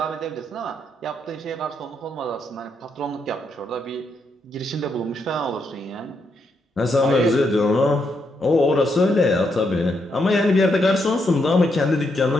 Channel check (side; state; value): both; normal; correlation 0.79